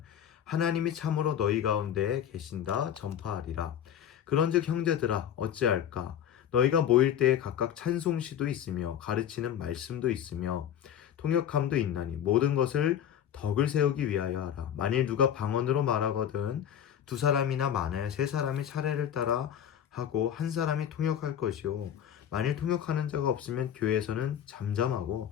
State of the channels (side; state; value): right; quieter; 9.6 dB